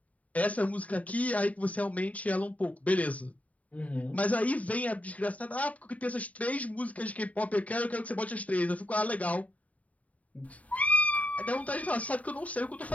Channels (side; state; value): right; late; 0.069 ms